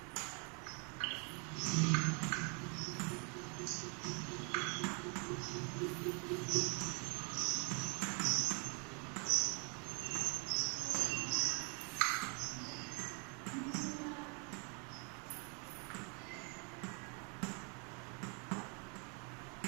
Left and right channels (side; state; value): left; quieter; 36.2 dB